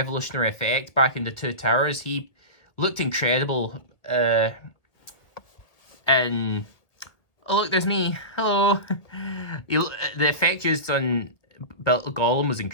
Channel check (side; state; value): right; late; 1.6 ms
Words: effect back in the Two Towers, he looked incredible. And oh, look, there's me. Hello. The effect used on Gollum was